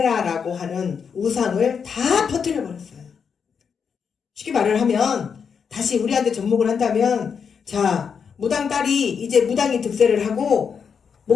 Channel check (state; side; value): quieter; right; 6.5 dB